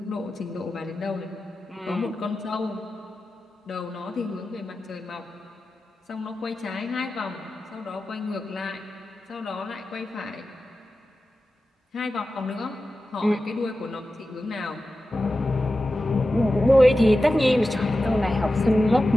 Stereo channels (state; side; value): normal; both; correlation 0.93